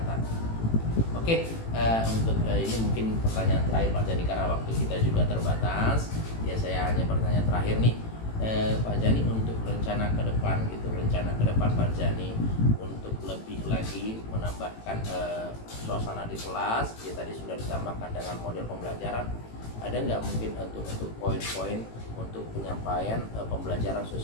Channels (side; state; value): right; late; 18 ms